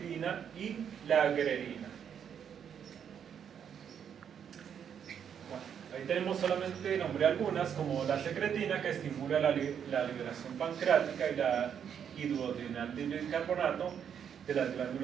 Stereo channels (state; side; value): quieter; left; 8.2 dB